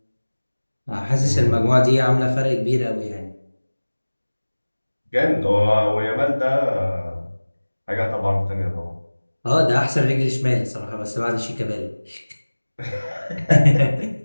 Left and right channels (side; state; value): both; inverted; correlation -1.00